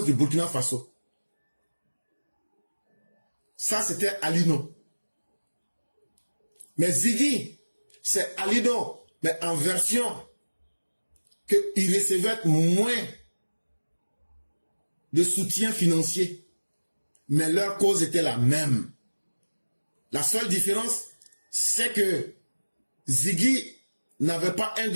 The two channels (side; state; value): both; inverted; correlation -1.00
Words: du Burkina Faso. Ça, c'était Alino. Mais Ziggy, c'est Alino, mais en version qu'il recevait moins de soutien financier. Mais leur cause était la même. La seule différence, c'est que Ziggy n'avait pas un